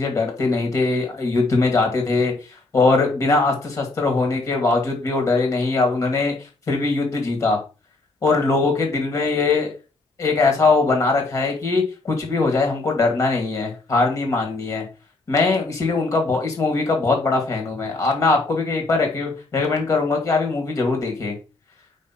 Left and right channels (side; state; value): right; quieter; 3.2 dB